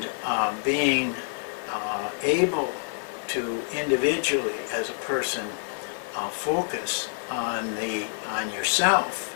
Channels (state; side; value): silent; right; digital silence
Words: being able to individually, as a person, focus on yourself